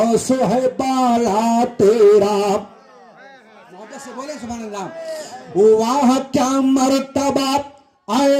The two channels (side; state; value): both; identical; correlation 1.00